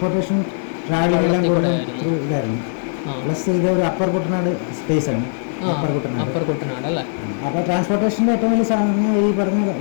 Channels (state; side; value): silent; right; 66 dB below the other